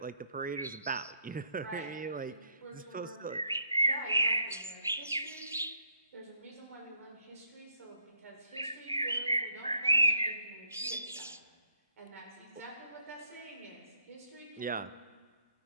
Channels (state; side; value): inverted; both; correlation -0.71